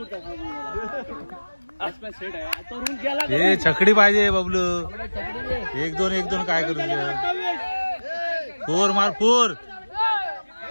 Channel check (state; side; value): inverted; both; correlation -1.00